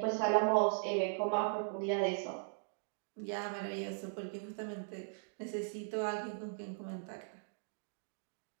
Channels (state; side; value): silent; left; digital silence